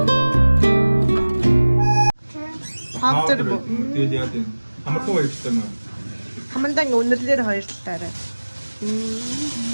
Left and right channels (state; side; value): inverted; both; correlation -1.00